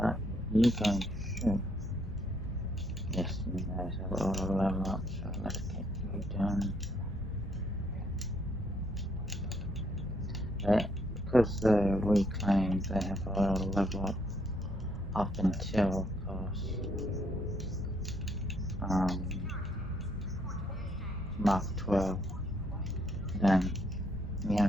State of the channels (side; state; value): both; normal; correlation 0.71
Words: you guys should. Yes, you guys have auto level up, so let's get you done. Because the reclaimed, they have auto level up until, of course, Mark 12. Then we